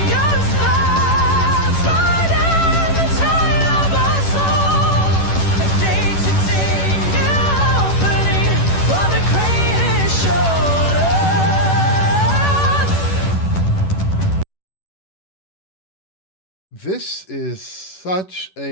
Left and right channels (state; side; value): late; right; 11 ms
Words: you're the stars, riding the tide of our soul. A day to take new opening for the greatest show. This is such